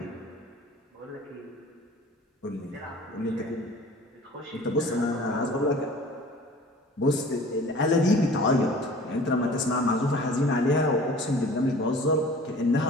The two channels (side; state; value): both; normal; correlation 0.45